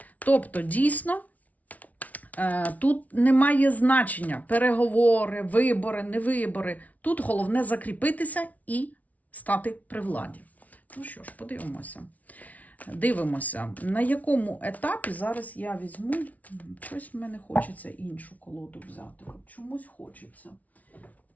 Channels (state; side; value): late; right; 0.071 ms